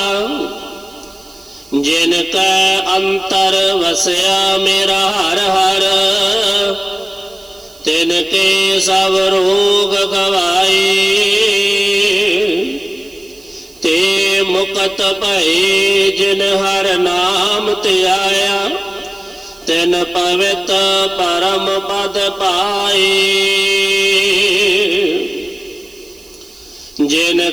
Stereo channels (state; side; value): noise; right; hiss, 25 dB below the sound